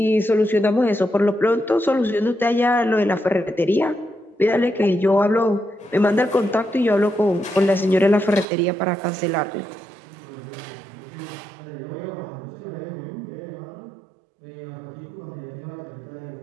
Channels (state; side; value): drops out; left; at 8.5 s